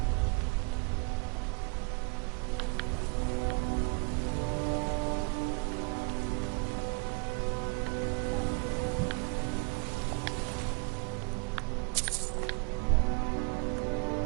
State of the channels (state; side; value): quieter; left; 33.3 dB